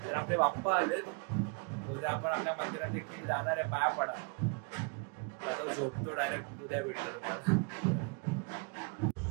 तर आपले बाप्पा आलेत. उद्या आपण आपल्या मंदिरात देखील जाणार आहे पाया पडा. आता झोपतो डायरेक्ट उद्या भेटतो तुम्हाला.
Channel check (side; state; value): left; quieter; 32.6 dB